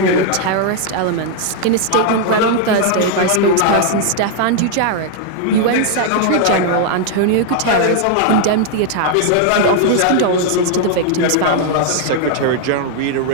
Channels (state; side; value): different; both; correlation 0.00